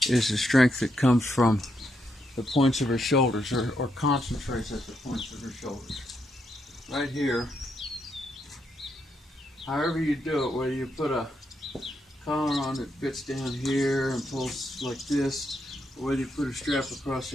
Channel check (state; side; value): normal; both; correlation 0.80